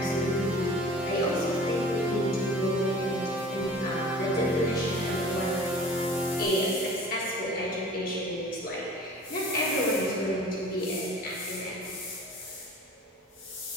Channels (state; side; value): normal; both; correlation 0.43